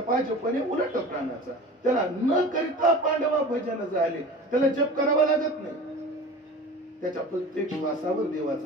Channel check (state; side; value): normal; both; correlation 0.37